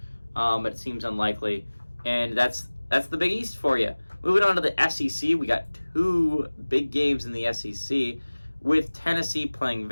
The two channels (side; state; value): both; inverted; correlation -1.00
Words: but it seems unlikely. And that's that's the Big East for you. Moving on to the SEC, we got two big games in the SEC with Tennessee playing